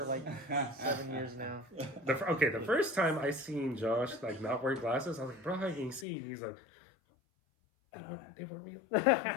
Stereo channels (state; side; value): drops out; right; at 6.1 s